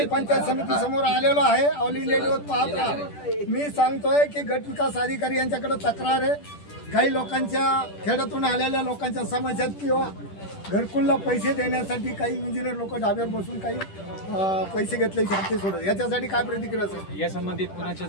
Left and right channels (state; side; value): late; right; 10 ms